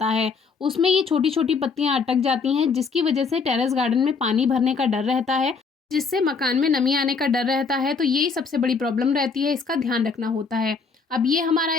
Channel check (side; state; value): right; quieter; 5.0 dB